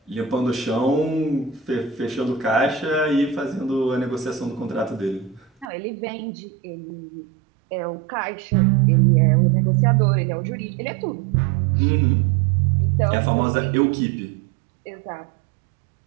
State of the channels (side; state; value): left; drops out; at 5.7 s